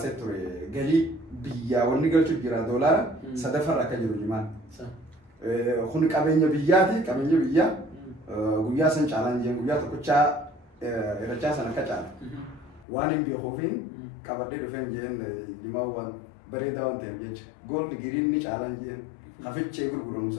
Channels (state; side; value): drops out; right; at 12.9 s